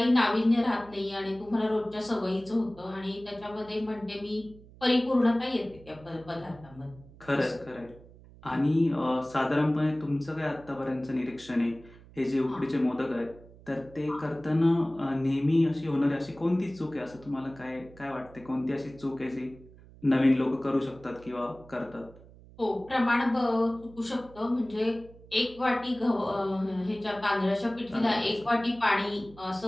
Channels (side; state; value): right; noise; hum, 22 dB below the sound